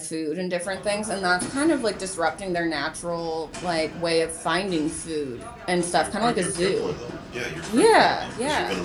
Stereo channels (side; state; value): both; identical; correlation 1.00